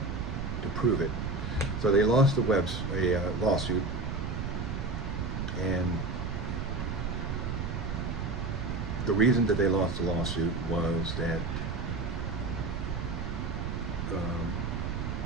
prove it. So they lost a lawsuit, and the reason that they lost the lawsuit was that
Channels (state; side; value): noise; right; rumble, 3 dB below the sound